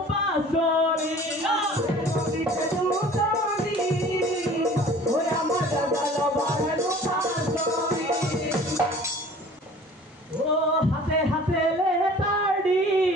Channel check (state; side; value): normal; both; correlation 0.47